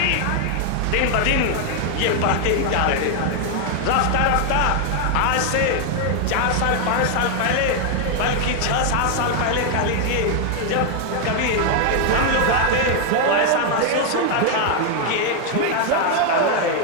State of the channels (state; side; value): different; both; correlation 0.00